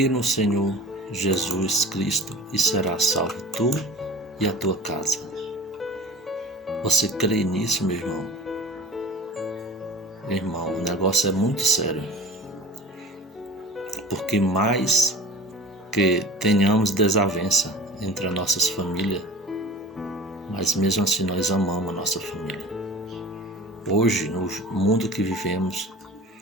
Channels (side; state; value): both; normal; correlation 0.39